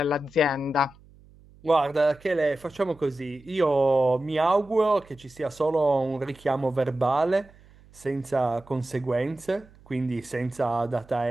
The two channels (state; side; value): noise; right; hum, 26 dB below the sound